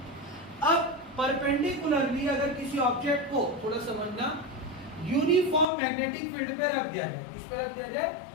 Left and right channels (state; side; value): drops out; right; at 5.7 s